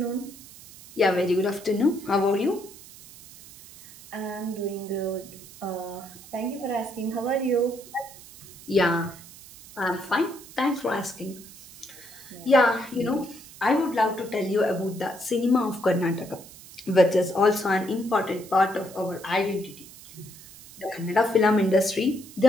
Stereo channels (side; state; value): right; noise; hiss, 19 dB below the sound